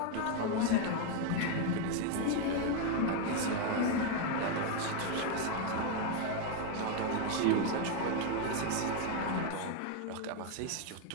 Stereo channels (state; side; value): different; both; correlation 0.01